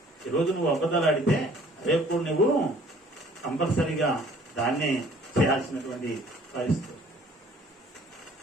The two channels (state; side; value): normal; both; correlation 0.55